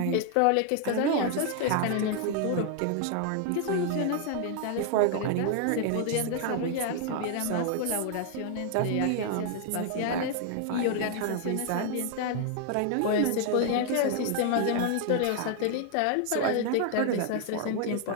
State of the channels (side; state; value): both; different; correlation 0.00